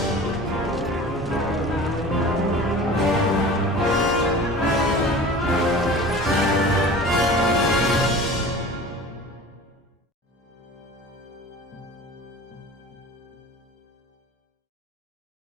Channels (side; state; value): both; normal; correlation 0.39